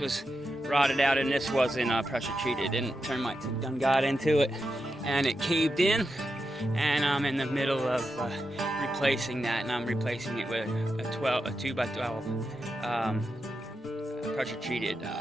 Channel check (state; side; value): normal; both; correlation 0.87